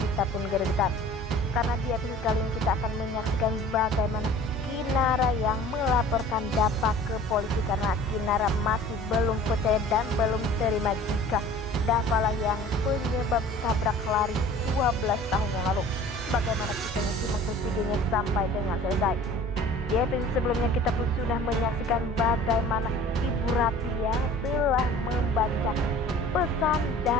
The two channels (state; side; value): normal; both; correlation 0.46